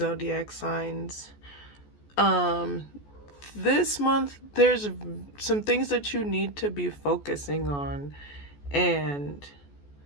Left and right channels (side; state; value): right; late; 14 ms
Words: signs. Um, this month there's some things that you need to be focusing on, and